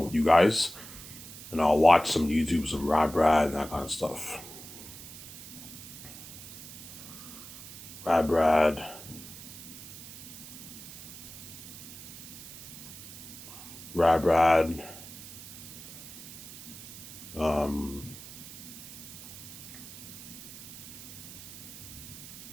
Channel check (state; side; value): noise; right; hiss, 14 dB below the sound